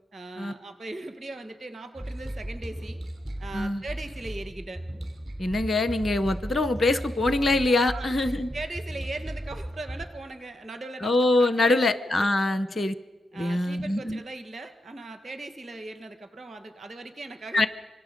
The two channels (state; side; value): normal; both; correlation 0.85